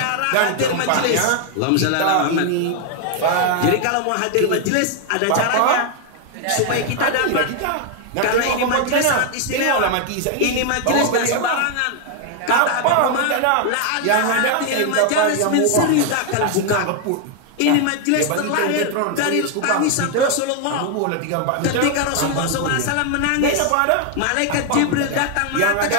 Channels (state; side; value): different; both; correlation 0.00